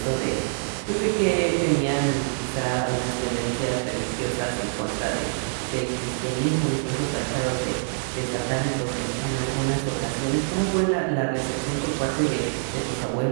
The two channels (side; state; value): left; silent; digital silence